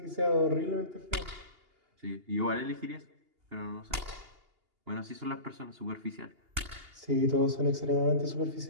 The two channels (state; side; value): late; left; 2.8 ms